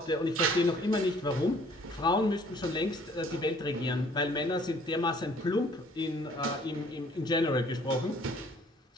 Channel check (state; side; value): normal; both; correlation 0.57